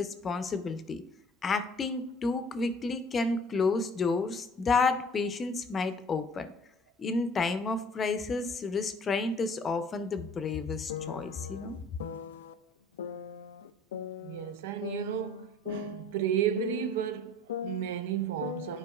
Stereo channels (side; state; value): both; normal; correlation 0.51